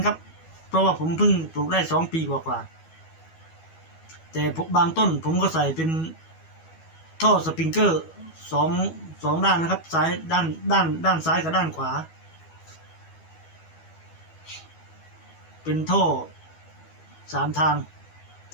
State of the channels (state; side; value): late; right; 12 ms